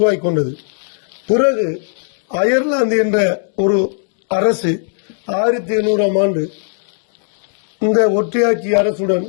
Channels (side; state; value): right; silent; digital silence